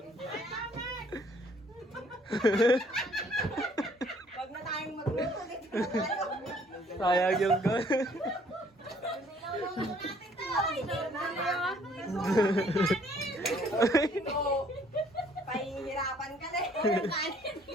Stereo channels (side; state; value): both; normal; correlation 0.61